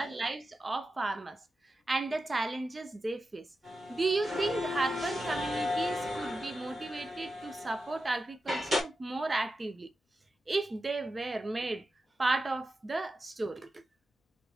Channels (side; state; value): both; normal; correlation 0.91